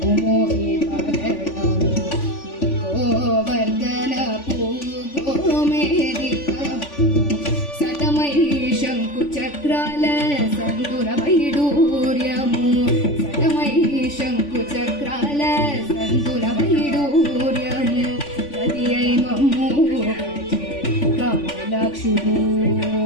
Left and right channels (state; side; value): late; right; 3.5 ms